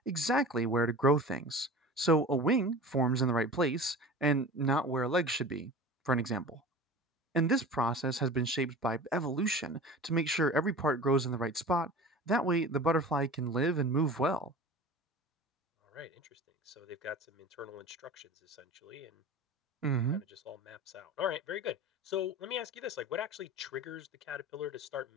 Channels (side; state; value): both; normal; correlation 0.36